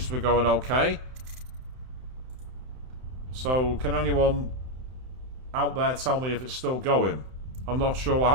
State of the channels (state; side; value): late; left; 31 ms